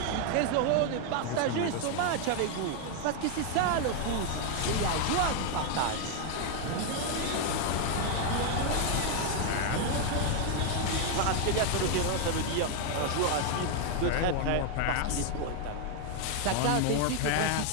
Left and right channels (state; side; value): different; both; correlation 0.00